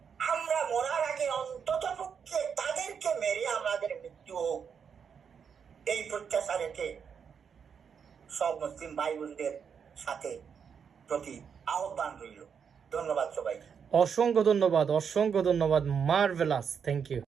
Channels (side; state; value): left; quieter; 6.9 dB